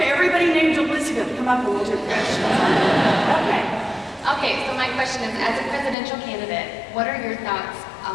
everybody named Elizabeth. Come up and we'll do questions. Okay. Okay, so my question is, as a presidential candidate, what are your thoughts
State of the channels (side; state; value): right; drops out; at 6.0 s